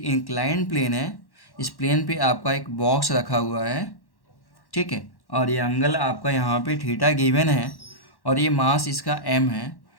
प्लेन है, इस प्लेन पे आपका एक बॉक्स रखा हुआ है, ठीक है, और ये एंगल आपका यहाँ पे थीटा गिवन है, और ये मास इसका एम है,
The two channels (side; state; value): right; late; 1.1 ms